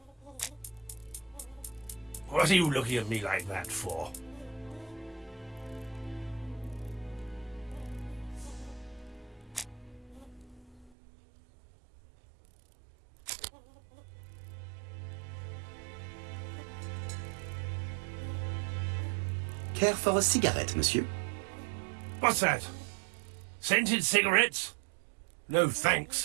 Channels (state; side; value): drops out; left; at 10.9 s